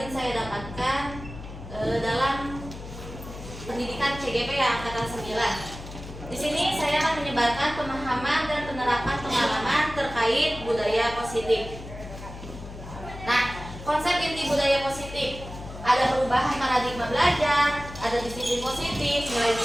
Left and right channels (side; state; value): left; noise; hum, 12 dB below the sound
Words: saya dapatkan dalam pendidikan CGP angkatan 9. Di sini saya akan menyebarkan pemahaman dan penerapan pengalaman terkait budaya positif. Nah, konsep inti budaya positif ada perubahan paradigma belajar, ada disiplin positif,